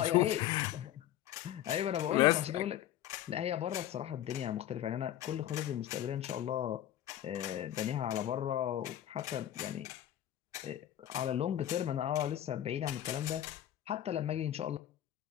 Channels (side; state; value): right; quieter; 12.0 dB